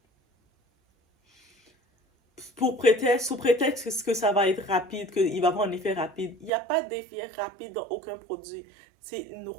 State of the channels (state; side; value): drops out; left; at 6.5 s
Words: sous prétexte que ça va être rapide, qu'il va avoir un effet rapide. Il n'y a pas d'effet rapide dans aucun produit. C'est une